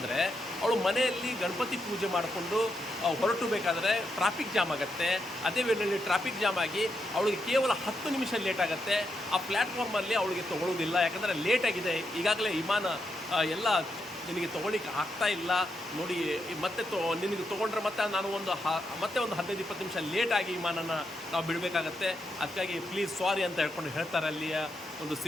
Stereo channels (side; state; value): both; normal; correlation 0.82